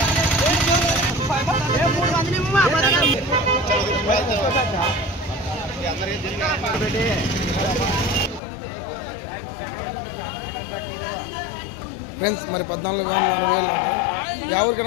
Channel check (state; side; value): drops out; right; at 8.4 s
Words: ఫ్రెండ్స్ మరి 14,000 యా